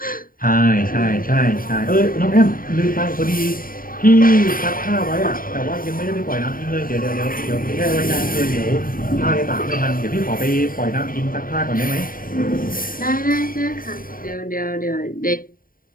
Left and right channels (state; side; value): late; right; 0.41 ms